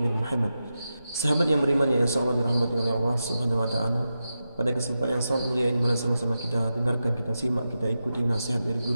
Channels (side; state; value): both; inverted; correlation -0.90